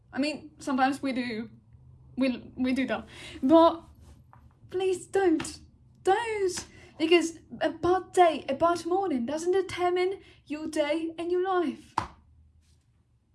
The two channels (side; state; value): both; identical; correlation 1.00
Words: I mean, sometimes we do. We do that. But please don't. Don't. Because a bad day, a bad morning doesn't determine your day and your life.